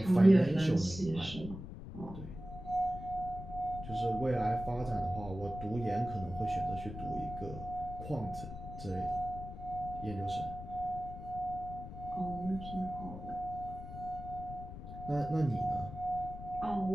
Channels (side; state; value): left; noise; rumble, 10 dB below the sound